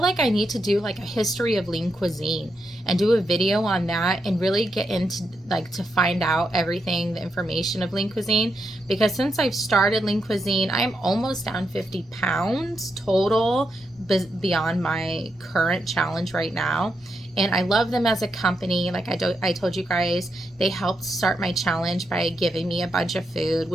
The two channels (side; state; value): both; normal; correlation 0.83